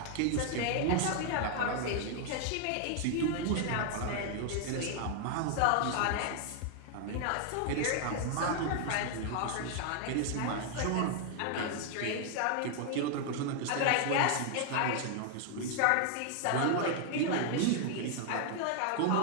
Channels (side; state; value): both; different; correlation 0.00